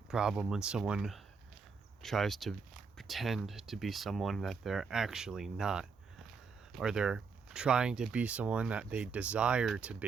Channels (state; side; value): quieter; left; 5.3 dB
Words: problem when someone tries to pretend to be someone that they're actually not, or they're trying to be someone that they desire to